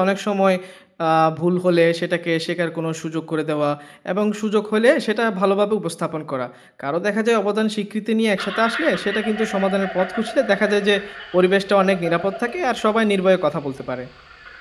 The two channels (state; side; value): identical; both; correlation 1.00